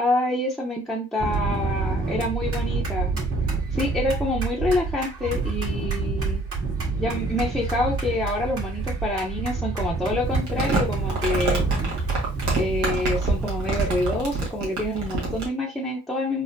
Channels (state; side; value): normal; both; correlation 0.58